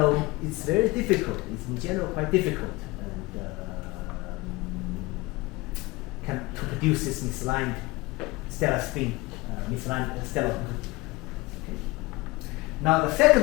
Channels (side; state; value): right; quieter; 22.2 dB